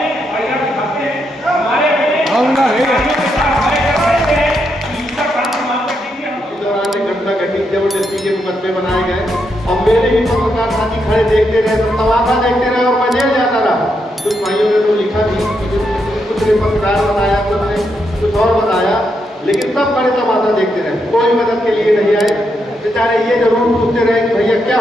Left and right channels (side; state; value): both; normal; correlation 0.81